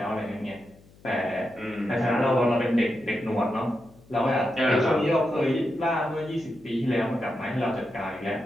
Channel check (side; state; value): left; noise; hum, 26 dB below the sound